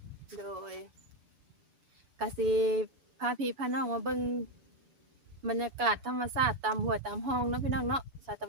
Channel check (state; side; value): late; left; 7.0 ms